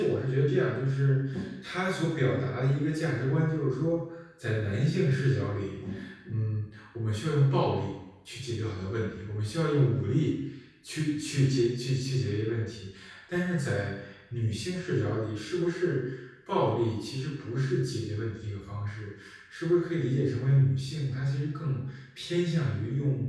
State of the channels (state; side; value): identical; both; correlation 1.00